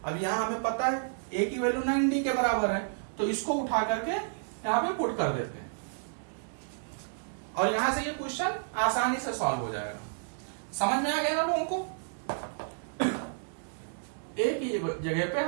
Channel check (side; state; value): left; silent; digital silence